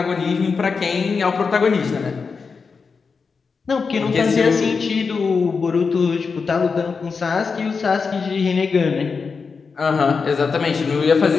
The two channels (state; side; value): quieter; right; 5.1 dB